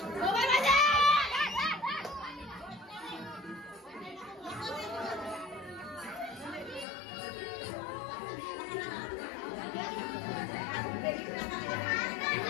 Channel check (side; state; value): right; drops out; at 6.9 s